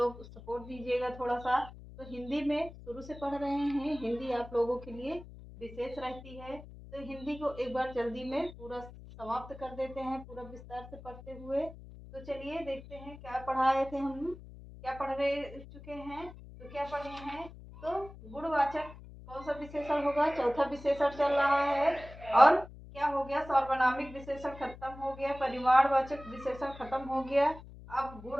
सपोर्ट दीजिएगा थोड़ा सा। तो हिंदी में शुरू से पढ़ रहे हैं, हिंदी आप लोगों के लिए विशेष रहती है। तो हिंदी को एक बार जल्दी में पूरा समाप्त कर देते हैं, पूरा विस्तार से पढ़ते हुए। तो चलिए देखते हैं क्या पढ़ाए थे हम, क्या पढ़ रहे चुके हैं। तो क्या पढ़े हैं? तो गुणवाचक कौन सा विशेषण होगा? चौथा विशेषण चल रहा है। और क्या हो गया? सार्वनामिक विशेषण खत्म हो गया, परिमाणवाचक विशेषण खत्म हो गया। अब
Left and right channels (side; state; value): left; noise; hum, 16 dB below the sound